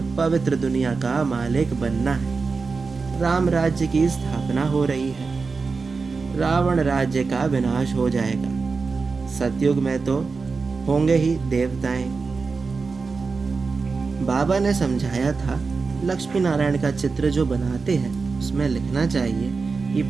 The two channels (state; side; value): quieter; left; 4.5 dB